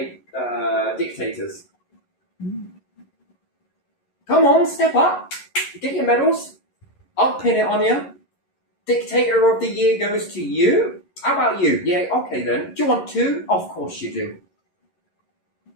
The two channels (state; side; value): late; right; 11 ms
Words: dictators? Come on, step up. Get your medals. I'll pin it on you. Dictator of the year goes to you. How about you? Yeah, okay then. Do you want two? Of course you do.